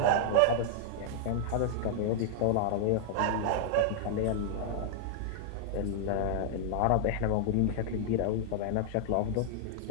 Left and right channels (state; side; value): different; both; correlation -0.01